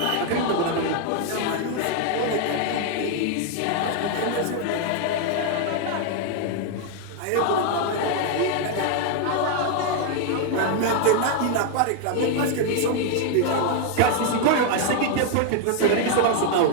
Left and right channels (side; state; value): both; different; correlation 0.00